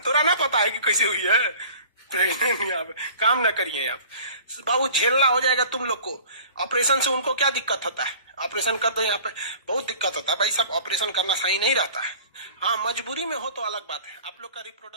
तोरा ना पता है कि कैसे हुई है प्रेग्नेंट? यहाँ पे काम ना करिए आप बाबू, झेलना हो जाएगा तुम लोग को। ऑपरेशन से उनको क्या दिक्कत होता है, ऑपरेशन कर दो, यहाँ पे बहुत दिक्कत होता है भाई साहब, ऑपरेशन करना सही नहीं रहता है। हाँ मजबूरी में हो तो अलग बात है। आप लोग का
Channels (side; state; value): both; inverted; correlation -0.46